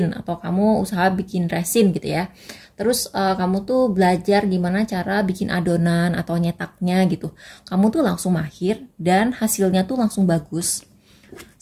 atau kamu usaha bikin resin gitu ya. Terus kamu tuh belajar gimana cara bikin adonan atau nyetaknya gitu. Kamu tuh langsung mahir dan hasilnya tuh langsung bagus.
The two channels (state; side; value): identical; both; correlation 1.00